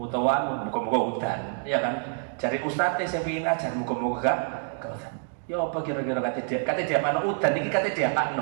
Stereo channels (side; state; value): left; silent; 60 dB below the other